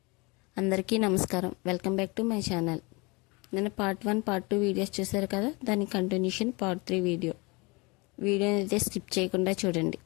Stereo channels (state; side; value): quieter; right; 27.1 dB